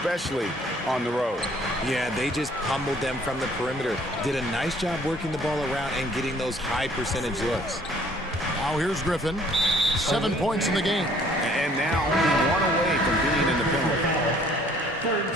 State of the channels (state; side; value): normal; both; correlation 0.58